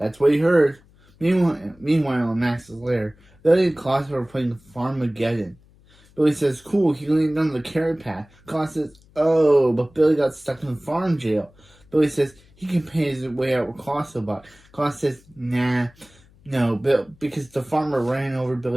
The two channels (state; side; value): noise; left; hum, 29 dB below the sound